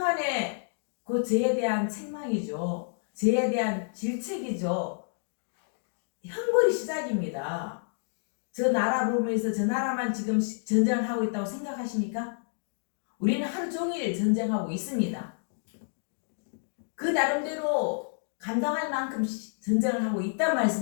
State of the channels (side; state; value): right; silent; digital silence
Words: 그 죄에 대한 책망이죠. 죄에 대한 질책이죠. 형벌이 시작입니다. 저 나라 보면서 저 나라만 지금 전쟁을 하고 있다고 생각하십니까? 우리는 하루 종일 전쟁하고 있습니다. 그 나름대로 감당할 만큼 전쟁을 하고 있단